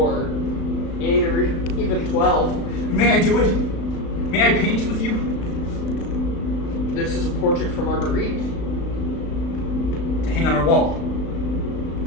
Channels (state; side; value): late; right; 35 ms